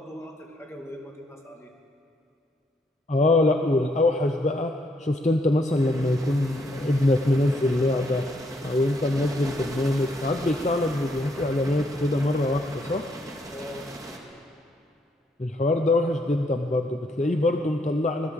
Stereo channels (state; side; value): normal; both; correlation 0.73